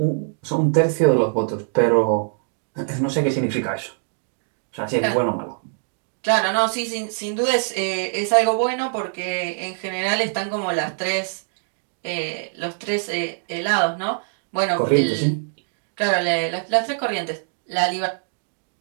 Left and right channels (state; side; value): silent; left; digital silence